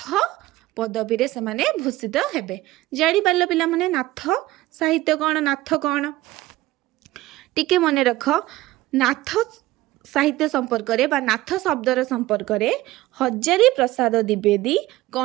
पदवी रे से माने भूषित हेबे जानी पारल पिला माने नाथ साहित्य कौन नाथ कौन टिके मने रख नाथ साहित्य संपर्क रे बा नाथ शब्दर संपर्क रे हजारी प्रसाद द्विवेदी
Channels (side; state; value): left; quieter; 17.3 dB